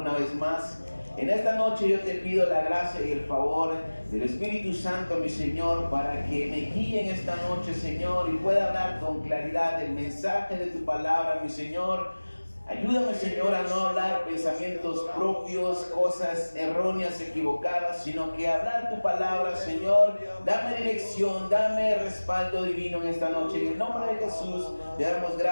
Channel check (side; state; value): both; inverted; correlation -1.00